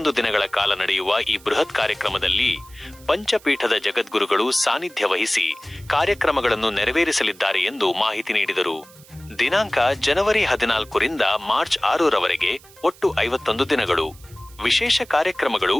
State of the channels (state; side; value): noise; right; hiss, 24 dB below the sound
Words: ದಿನಗಳ ಕಾಲ ನಡೆಯುವ ಈ ಬೃಹತ್ ಕಾರ್ಯಕ್ರಮದಲ್ಲಿ ಪಂಚಪೀಠದ ಜಗದ್ಗುರುಗಳು ಸಾನ್ನಿಧ್ಯ ವಹಿಸಿ ಕಾರ್ಯಕ್ರಮಗಳನ್ನು ನೆರವೇರಿಸಲಿದ್ದಾರೆ ಎಂದು ಮಾಹಿತಿ ನೀಡಿದರು. ದಿನಾಂಕ ಜನವರಿ 14ರಿಂದ ಮಾರ್ಚ್ 6ರವರೆಗೆ ಒಟ್ಟು 51 ದಿನಗಳು. ವಿಶೇಷ ಕಾರ್ಯಕ್ರಮಗಳು: